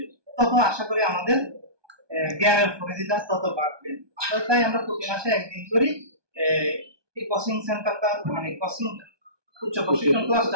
তত আশা করি আমাদের জ্ঞানের পরিধিটা তত বাড়বে। তাই আমরা প্রতি মাসে একদিন করি এই কোচিং সেন্টারটা, মানে কোচিং উচ্চ প্রশিক্ষণ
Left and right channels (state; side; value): late; left; 1.2 ms